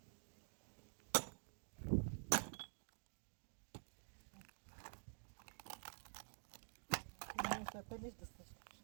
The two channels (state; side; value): silent; left; digital silence